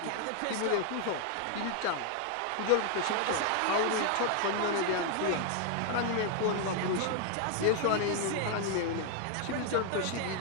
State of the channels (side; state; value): both; different; correlation 0.00